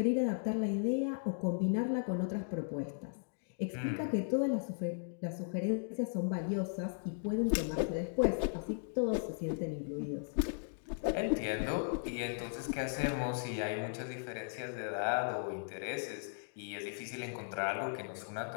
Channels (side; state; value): right; silent; digital silence